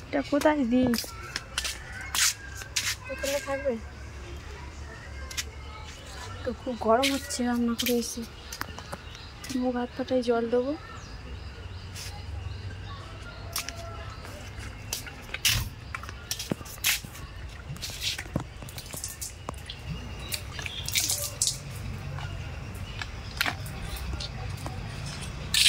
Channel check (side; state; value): both; identical; correlation 1.00